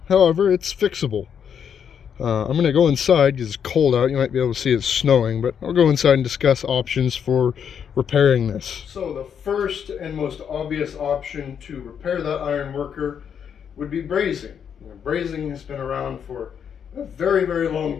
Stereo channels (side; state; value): right; quieter; 7.8 dB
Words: However, it's fixable. I'm gonna go inside because it's cold out. You might be able to see it's snowing, but I'll go inside and discuss options for repairing this. So the first and most obvious option to repair that iron worker would be brazing. Brazing has been around for a very, very